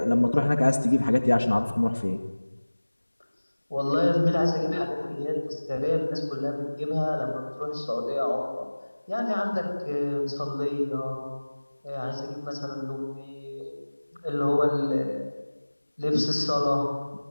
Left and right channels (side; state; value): both; inverted; correlation -1.00